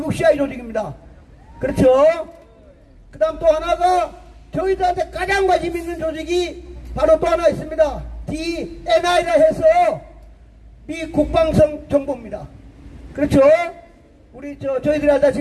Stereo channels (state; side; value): identical; both; correlation 1.00